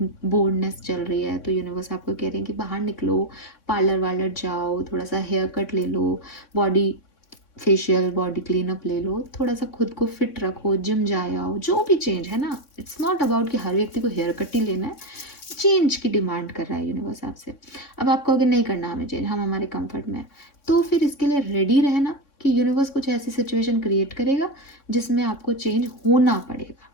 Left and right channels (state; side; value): late; right; 3.6 ms